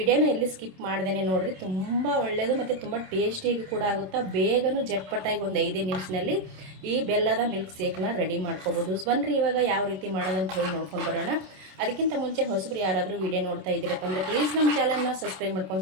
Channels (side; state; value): left; late; 27 ms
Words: ಎಲ್ಲಿ ಸ್ಕಿಪ್ ಮಾಡ್ದೇನೆ ನೋಡ್ರಿ. ತುಂಬ ಒಳ್ಳೆಯದು ಮತ್ತು ತುಂಬ ಟೇಸ್ಟಿಯಾಗಿ ಕೂಡ ಆಗುತ್ತಾ. ಬೇಗನೂ ಜಟ್ಪಟ್ಟಾಗಿ ಒಂದು 5 ನಿಮಿಷದಲ್ಲಿ ಈ ಬೆಲ್ಲದ ಮಿಲ್ಕ್ ಶೇಕ್ನ ರೆಡಿ ಮಾಡ್ಕೋಬೋದು. ಬನ್ನಿರಿ ಇವಾಗ ಯಾವ ರೀತಿ ಮಾಡೋದಂತ ಹೇಳಿ ನೋಡ್ಕೊಂಡು ಬರೋಣ. ಅದಕ್ಕಿಂತ ಮುಂಚೆ ಹೊಸಬ್ರು ಯಾರಾದರೂ ವಿಡಿಯೋ ನೋಡ್ತಾ ಇದ್ದೀರಪ್ಪ ಅಂದರೆ ಪ್ಲೀಸ್ ನಮ್ಮ ಚಾನಲ್ನ ಸಬ್ಸ್ಕ್ರೈಬ್